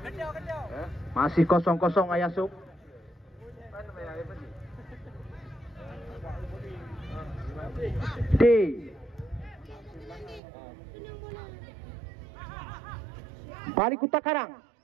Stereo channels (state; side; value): drops out; left; at 10.4 s